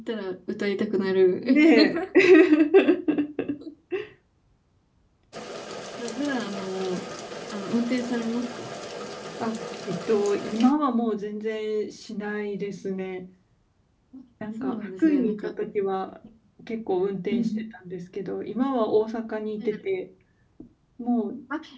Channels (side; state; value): both; identical; correlation 1.00